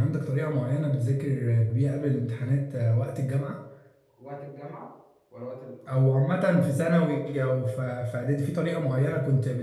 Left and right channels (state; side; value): identical; both; correlation 1.00